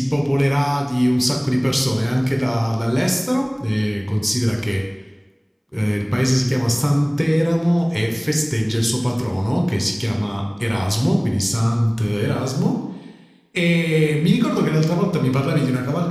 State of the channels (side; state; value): both; identical; correlation 1.00